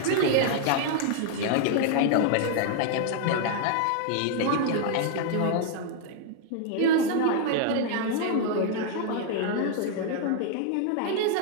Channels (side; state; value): both; different; correlation 0.00